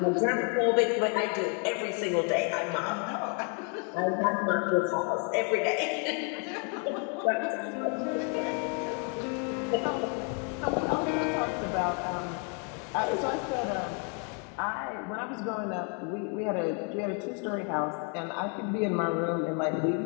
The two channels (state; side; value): quieter; right; 38.5 dB